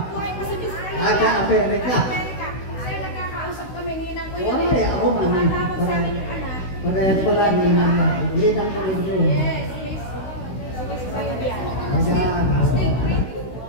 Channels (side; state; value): right; late; 16 ms